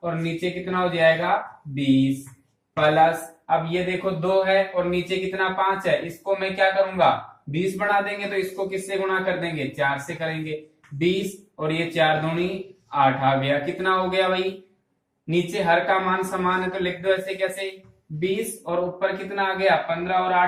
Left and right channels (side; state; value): both; identical; correlation 1.00